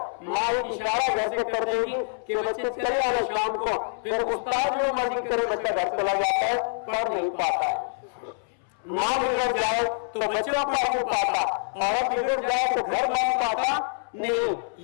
माँ इशारा वैसे कर देगी कि बच्चे चले आए शाम को। फिर उस्ताद जो मर्जी करे बच्चा घर चला जाता है, पढ़ नहीं पाता है। माँ बिगड़ जाए तो बच्चा पढ़ नहीं पाता, औरत बिगड़ जाए तो घर बन पाता नहीं।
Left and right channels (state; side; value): silent; right; 61 dB below the other